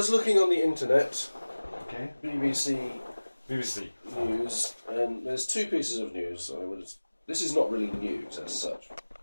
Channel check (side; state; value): both; inverted; correlation -1.00